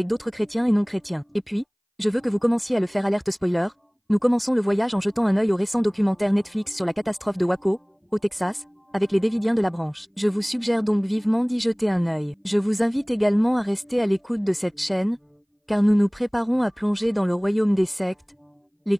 d'autres chrétiens et non chrétiens. Et puis, je veux que vous commenciez à le faire. Alerte spoiler. Nous commençons le voyage en jetant un œil au récent documentaire Netflix sur la catastrophe de Waco, au Texas, avec les Davidiens de la branche. Je vous suggère donc vivement d'y jeter un œil. Je vous invite également à rester à l'écoute de cette chaîne, car nous nous préparons à plonger dans le royaume des sectes, les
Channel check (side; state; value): both; identical; correlation 1.00